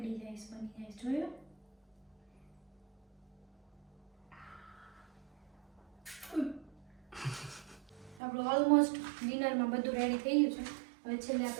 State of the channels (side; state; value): left; drops out; at 8.2 s